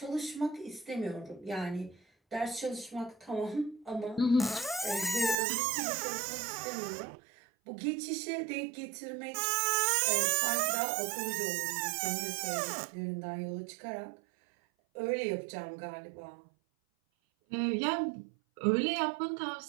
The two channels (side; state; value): left; drops out; at 5.4 s